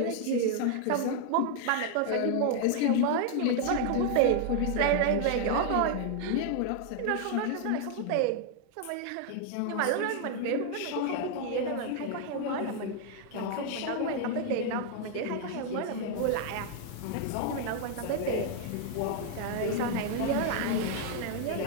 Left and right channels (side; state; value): both; different; correlation 0.00